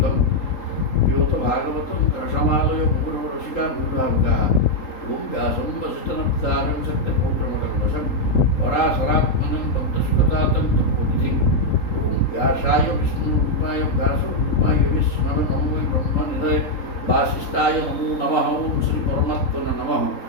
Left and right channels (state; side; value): late; right; 3.8 ms